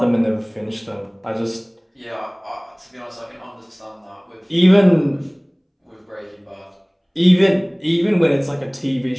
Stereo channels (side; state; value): both; identical; correlation 1.00